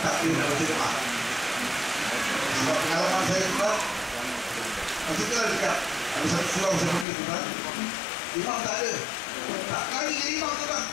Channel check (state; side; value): drops out; right; at 7.1 s